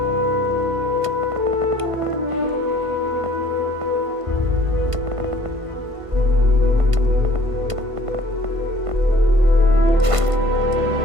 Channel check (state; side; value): late; left; 1.5 ms